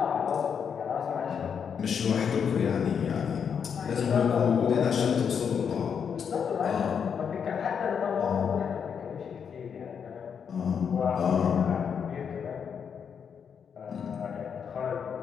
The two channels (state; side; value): quieter; right; 7.1 dB